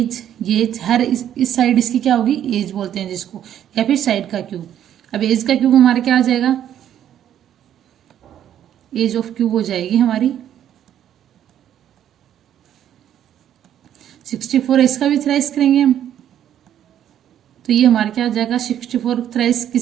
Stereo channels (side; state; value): left; quieter; 10.5 dB